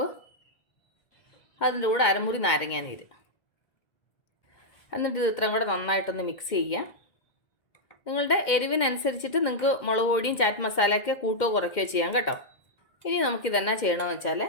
അതിൻ്റെ കൂടെ അരമുറി നാരങ്ങ നീര്. എന്നിട്ട് ഇത് ഇത്രയും കൂടെ നന്നായിട്ടൊന്ന് മിക്സ് ചെയ്യുക. നിങ്ങളുടെ എരിവിനനുസരിച്ചിട്ട് നിങ്ങൾക്ക് മുളക് പൊടിയും ചാറ്റ് മസാലയൊക്കെ കൂട്ടോ കുറയ്ക്കുകയോ ചെയ്യാം കേട്ടോ. ഇനി നമുക്കിതെന്നാ ചെയ്യണമെന്ന് വെച്ചാൽ,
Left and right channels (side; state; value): right; late; 2.1 ms